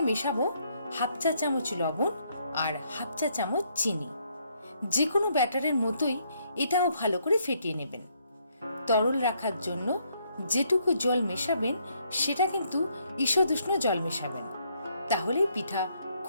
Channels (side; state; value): both; inverted; correlation -0.71